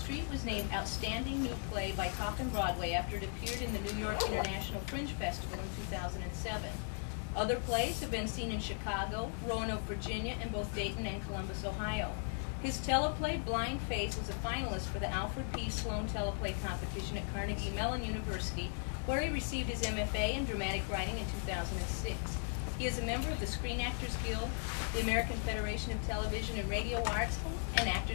was named Outstanding New Play by Coffin Broadway after it appeared in the New York International Fringe Festival in 2007. Other plays have been seen in Chicago, Roanoke, Virginia, and both Dayton and Columbus, Ohio. His teleplay, Blind Face, was a finalist for the Alfred P. Sloan Teleplay Competition at Carnegie Mellon University, where he received his MFA in dramatic writing in 2006. He is a member of the Screen Actors Guild, the American Federation of Television and Radio Arts, and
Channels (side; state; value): right; silent; 53 dB below the other